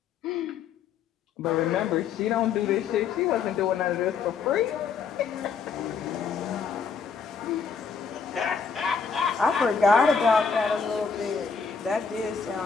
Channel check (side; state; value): right; quieter; 5.9 dB